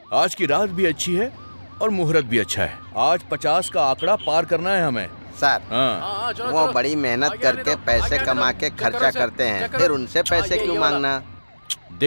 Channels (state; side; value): inverted; both; correlation -1.00